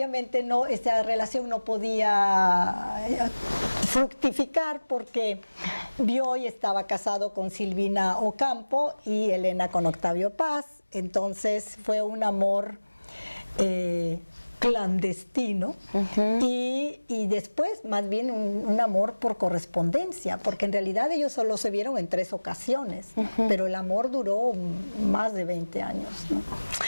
esta relación no podía fructificar porque Bioy estaba casado con Silvina Ocampo y Elena con Octavio Paz, entonces fue un amor clandestino, y después más bien un amor por correspondencia, porque en realidad ellos solo se vieron en 3 ocasiones, pero el amor duró más de 20 años, ¿no?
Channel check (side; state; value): both; inverted; correlation -1.00